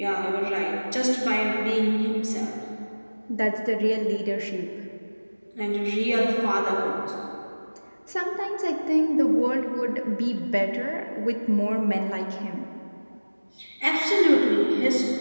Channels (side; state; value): both; inverted; correlation -1.00